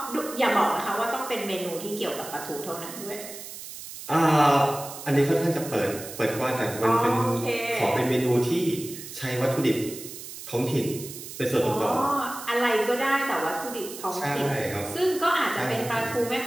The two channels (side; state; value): right; noise; hiss, 12 dB below the sound